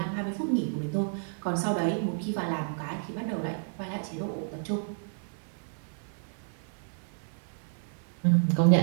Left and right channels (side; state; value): left; silent; 57 dB below the other